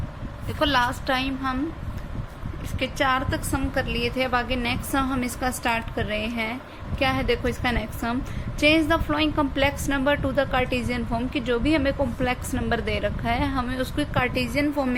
देखो लास्ट टाइम हम इसके 4 तक सम कर लिए थे। अब आगे नेक्स्ट सम हम इसका स्टार्ट कर रहे हैं। क्या है देखो इसका next sum, change the flowing complex number two the Cartesian form. कि जो भी हमें कॉम्प्लेक्स नंबर दे रखा है हमें उसको कार्टेशियन फॉर्म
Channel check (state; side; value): identical; both; correlation 1.00